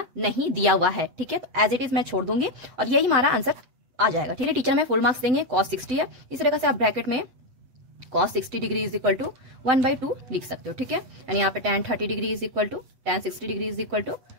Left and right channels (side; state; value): left; late; 8.3 ms